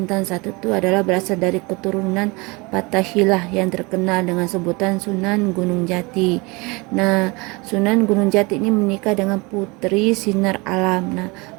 I itu adalah berasal dari keturunan Fathahilah yang terkenal dengan sebutan Sunan Gunung Jati. Nah, Sunan Gunung Jati ini menikah dengan Putri Sinar Alam. Nah,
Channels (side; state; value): left; quieter; 26.2 dB